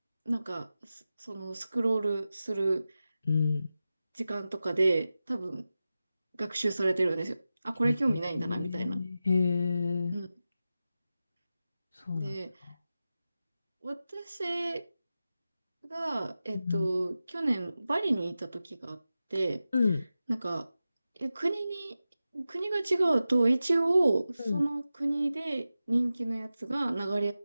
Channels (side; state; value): both; inverted; correlation -0.93